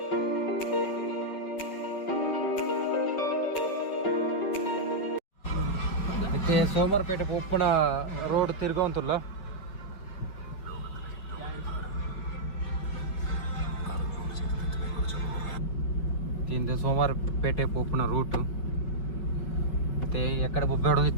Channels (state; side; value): late; right; 5.3 ms